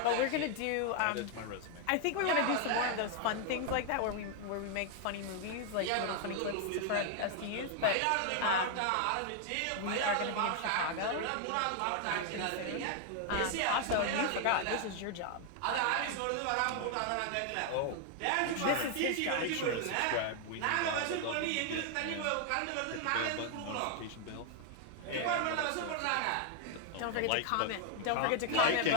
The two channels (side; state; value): both; different; correlation 0.00